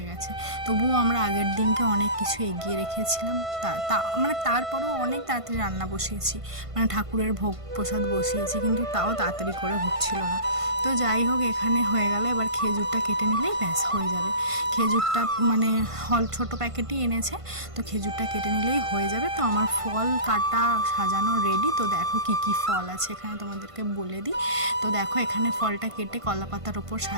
গেছে। তবুও আমরা আগের দিনকে অনেক কিছু এগিয়ে রেখেছিলাম, মানে তারপরেও অনেক তাড়াতাড়ি রান্না বসিয়েছি, মানে ঠাকুরের ভোগ প্রসাদ বসিয়েছি, কিন্তু তাও তাড়াতাড়ি করে হচ্ছিল না। তো যাই হোক, এখানে হয়ে গেলে এবার খেজুরটা কেটে নিলেই ব্যাস হয়ে যাবে। খেজুরটা মানে ছোটো প্যাকেটই এনেছে, তো খেজুরটা কেটে নিলেই হয়ে যাবে। তো আমার ফল কাটা সাজানো রেডি। তো দেখো কি কি ফল আছে এখানে তোমাদেরকে বলে দিই। তো দেখো এখানে ফলটা কেটে কলা পাতার ওপর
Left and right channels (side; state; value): left; late; 1.5 ms